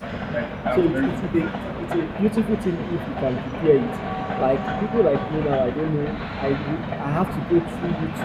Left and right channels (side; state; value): both; identical; correlation 1.00